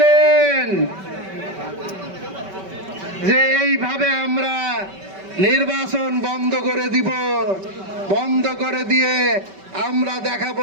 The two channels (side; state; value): left; late; 5.2 ms